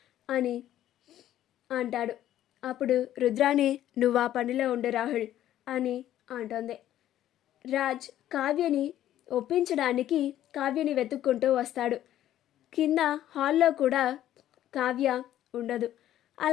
అని అంటాడు. అప్పుడు రుద్రాణి, నువ్వు ఆ పనిలో ఉండు రాహుల్ అని అంటుంది. రాజ్ కావ్యని ఒప్పించడానికి కావ్యని వెతుక్కుంటూ వస్తాడు. కింద హాల్లో కూడా కావ్య ఉండదు.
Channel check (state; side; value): quieter; right; 12.4 dB